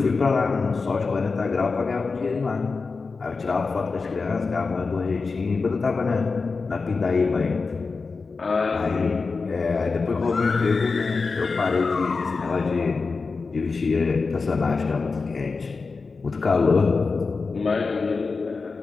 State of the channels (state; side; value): quieter; right; 4.4 dB